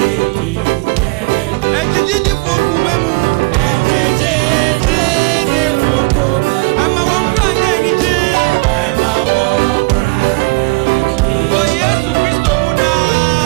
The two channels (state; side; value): quieter; left; 28.9 dB